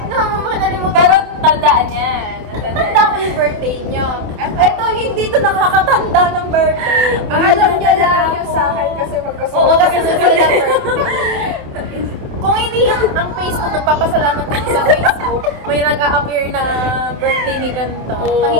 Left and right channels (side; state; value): left; late; 28 ms